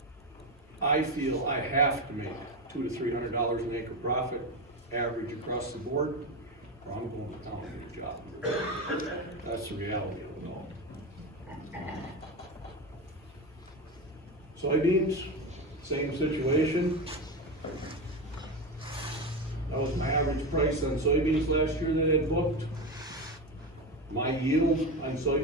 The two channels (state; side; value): normal; both; correlation 0.17